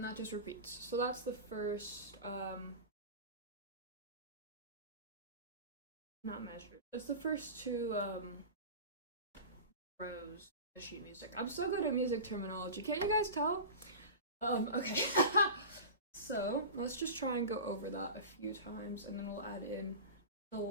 that just repeats. So that's the first, not measured. That's the first two rows of sheet music. I'm so good at music terminology. Can't you guys tell? Okay. So let's just try and go over that a few times, and then we'll add in the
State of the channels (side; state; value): both; inverted; correlation -0.30